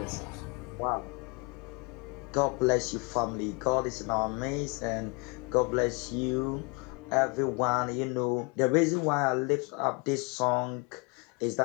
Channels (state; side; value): quieter; right; 30.1 dB